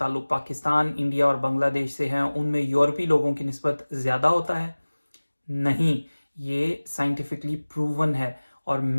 पाकिस्तान, इंडिया और बांग्लादेश से है, उनमें यूरोपी लोगों की निस्बत ज़्यादा होता है? नहीं, ये साइंटिफिकली प्रूवन है और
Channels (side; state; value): both; inverted; correlation -1.00